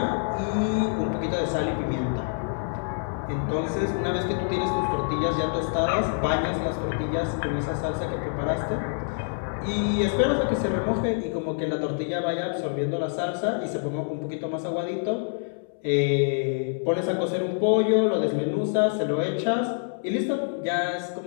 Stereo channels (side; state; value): right; silent; 61 dB below the other